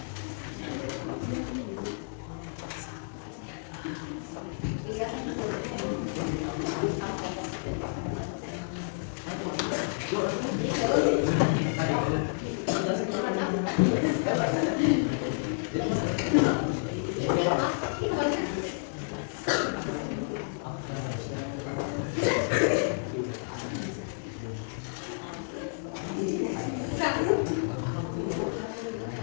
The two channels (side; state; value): right; silent; digital silence